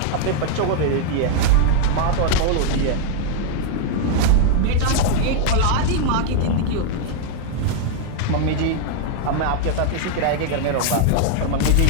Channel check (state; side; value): different; both; correlation 0.00